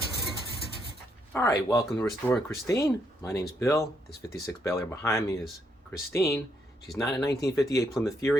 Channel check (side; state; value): both; normal; correlation 0.76